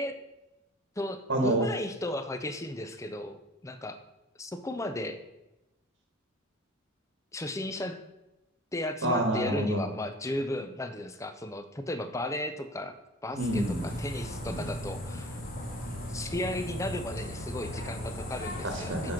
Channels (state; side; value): normal; both; correlation 0.43